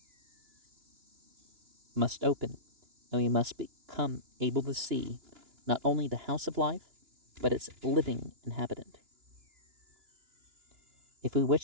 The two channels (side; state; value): left; late; 2.9 ms